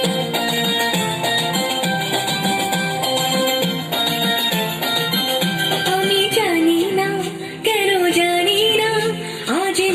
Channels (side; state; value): both; identical; correlation 1.00